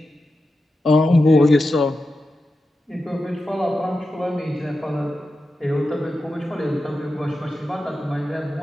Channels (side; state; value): both; normal; correlation 0.91